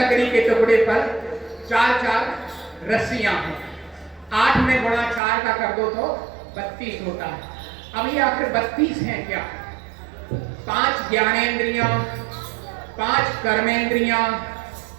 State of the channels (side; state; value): left; drops out; at 5.2 s